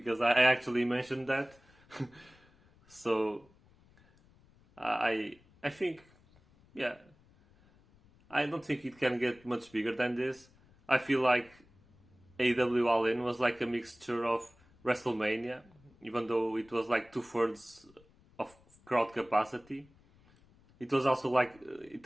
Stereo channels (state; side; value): noise; left; rumble, 29 dB below the sound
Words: I actually mentioned that. So I think, yeah, I don't think it can get much bigger than this. I feel like AEW All In was like a mixture of WrestleMania, even though it was like 2/3 of crowd capacity. It also